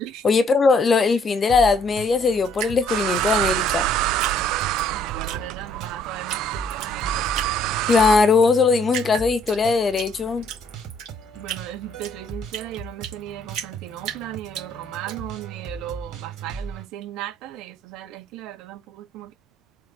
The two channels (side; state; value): both; normal; correlation 0.64